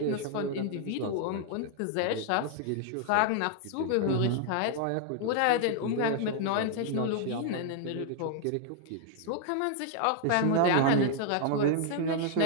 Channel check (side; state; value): both; different; correlation 0.00